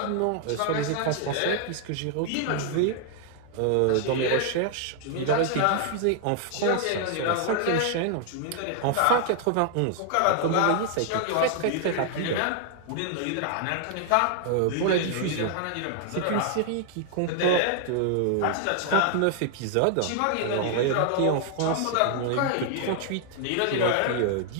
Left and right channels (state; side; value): different; both; correlation 0.00